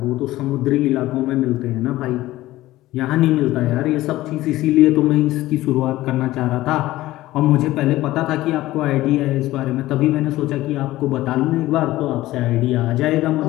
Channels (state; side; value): quieter; right; 16.5 dB